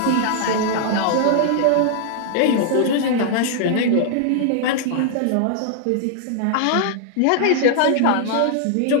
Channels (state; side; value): different; both; correlation -0.01